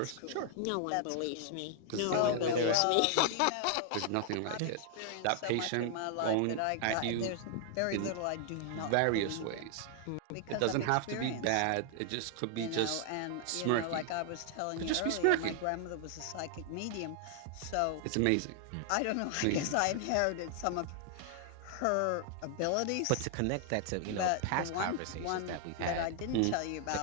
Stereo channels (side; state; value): both; different; correlation 0.00